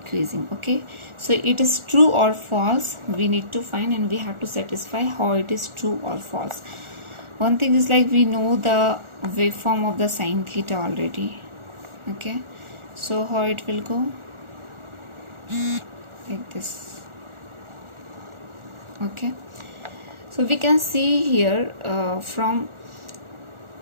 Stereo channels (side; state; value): left; late; 1.4 ms